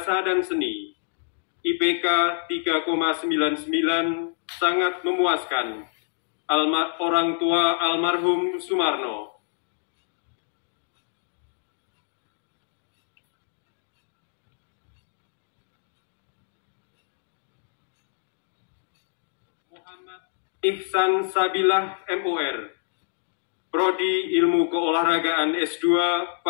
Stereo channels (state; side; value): silent; right; digital silence